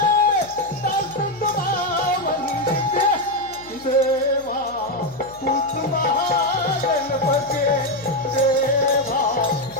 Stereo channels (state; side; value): noise; left; hum, 23 dB below the sound